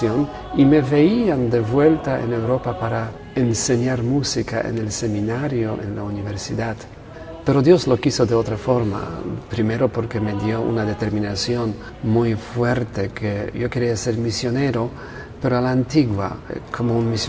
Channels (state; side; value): identical; both; correlation 1.00